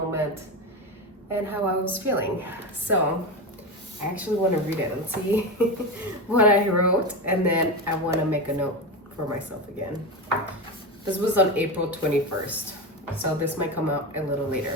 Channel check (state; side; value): normal; both; correlation 0.19